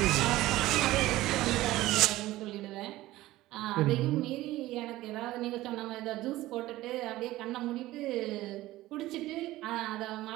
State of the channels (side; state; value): left; quieter; 16.7 dB